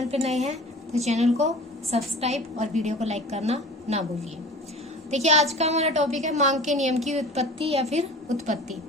पर नए हैं तो चैनल को सब्सक्राइब और वीडियो को लाइक करना ना भूलिए। देखिए, आज का हमारा टॉपिक है मांग के नियम की उत्पत्ति या फिर उत्पत्ति।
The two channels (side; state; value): both; normal; correlation 0.40